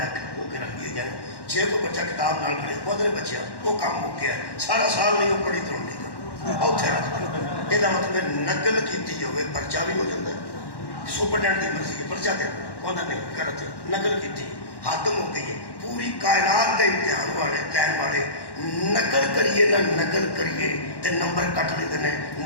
کے رکھ دی جائیں. جے کوئی بچہ کتاب نال پڑھے وہ بچے وہ کام ہو گیا سارا سال نہیں وہ پڑھی تو نہیں اتنے رکھ دیں. یہ مطلب نقل کی ہوئے پرچہ بھی ہو جاتا ہے. سپرڈینٹ کی مرضی ہے پرچہ دے وہ نہیں کرتے نقل کی حد ہو گئی ہے. پوری کائنات کے امتحان والے لین والے نقل کریے نہ نقل کریے تے نمبر کٹ لیتے ہیں,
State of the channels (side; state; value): right; late; 1.1 ms